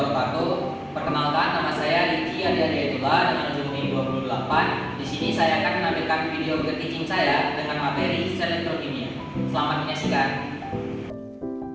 Perkenalkan, nama saya Riki Ardiaditullah dengan ujung NIM 28. Di sini saya akan menampilkan video teaching saya dengan materi sel elektrokimia. Selamat menyaksikan.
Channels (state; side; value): identical; both; correlation 1.00